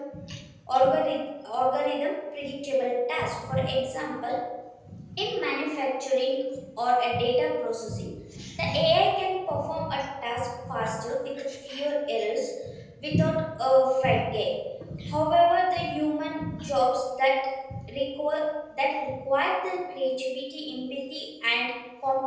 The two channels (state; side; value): identical; both; correlation 1.00